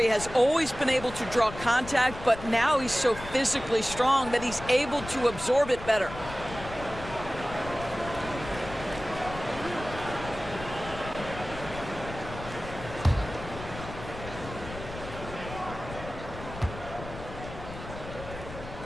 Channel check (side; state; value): left; noise; rumble, 12 dB below the sound